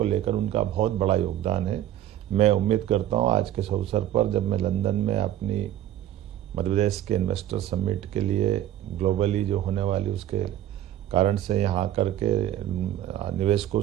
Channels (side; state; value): left; quieter; 12.3 dB